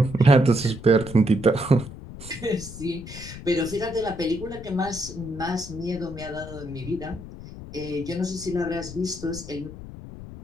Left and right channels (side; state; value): left; noise; rumble, 13 dB below the sound